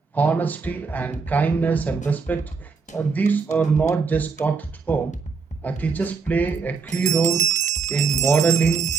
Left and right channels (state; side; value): quieter; left; 5.0 dB